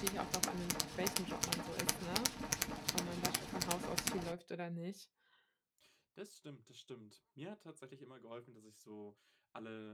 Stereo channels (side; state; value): both; identical; correlation 1.00